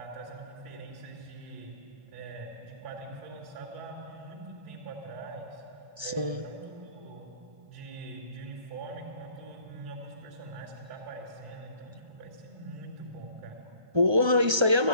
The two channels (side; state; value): left; late; 1.3 ms